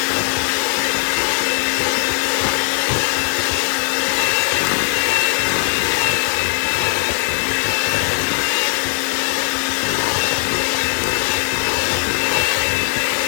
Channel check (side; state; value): right; silent; digital silence